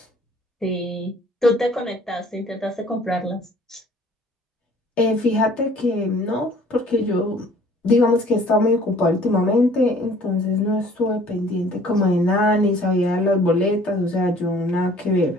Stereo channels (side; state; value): both; normal; correlation 0.54